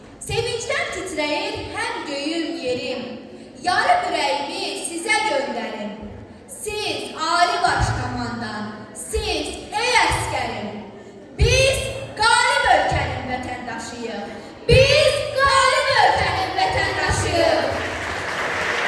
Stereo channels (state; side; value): identical; both; correlation 1.00